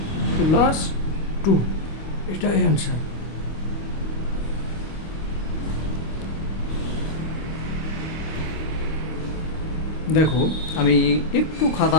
প্লাস 2, এটাই অ্যান্সার। দেখো আমি একটু খাতা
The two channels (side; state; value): right; late; 25 ms